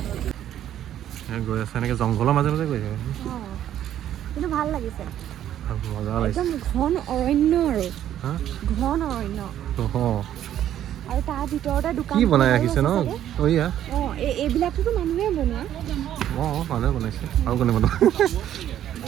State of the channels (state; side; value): quieter; left; 11.2 dB